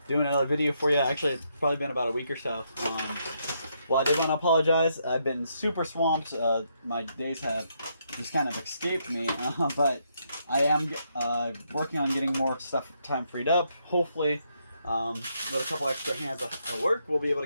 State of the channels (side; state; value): both; inverted; correlation -0.77